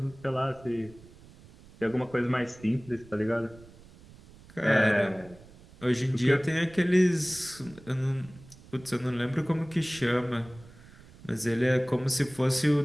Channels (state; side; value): noise; right; rumble, 22 dB below the sound